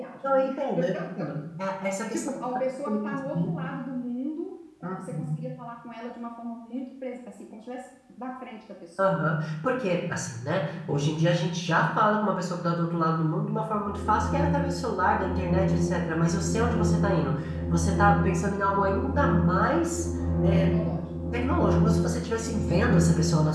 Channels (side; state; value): both; identical; correlation 1.00